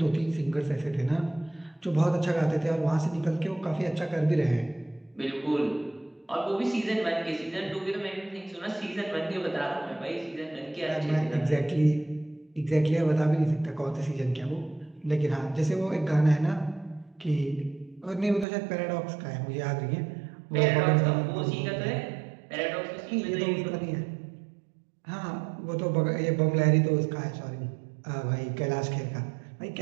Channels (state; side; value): drops out; left; at 18.4 s